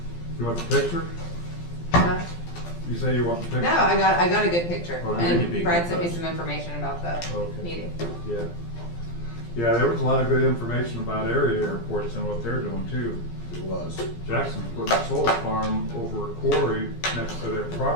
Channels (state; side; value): late; right; 12 ms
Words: You want the picture? Huh? You say you want the picture? No, I got a good picture. Oh, then it'd be And Brad good sent me post. some information about the Okay. meeting. Yeah. Yeah, there was a lot of good information about area airports and what they're doing too. It was. Jackson's putting a solar farm over a quarry next to their